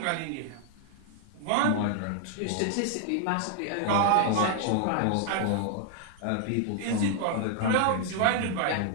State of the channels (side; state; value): both; different; correlation 0.00